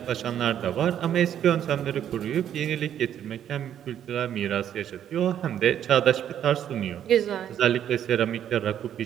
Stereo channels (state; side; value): quieter; left; 10.0 dB